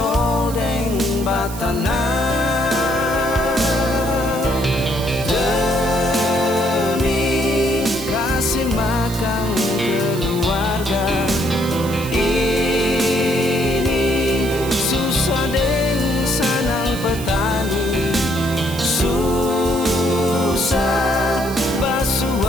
deng batana demi kasih makan keluarga. Ini susah deng sanang petani, susah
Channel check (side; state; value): right; noise; hiss, 13 dB below the sound